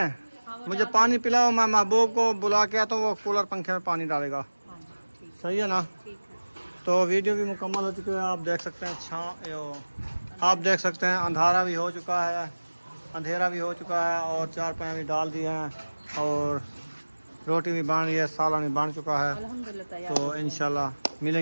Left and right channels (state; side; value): inverted; both; correlation -1.00